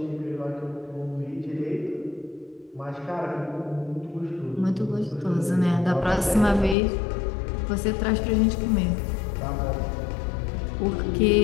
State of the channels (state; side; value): drops out; right; at 6.8 s